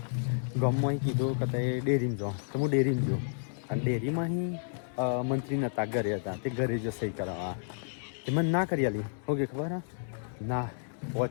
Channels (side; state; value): right; silent; 56 dB below the other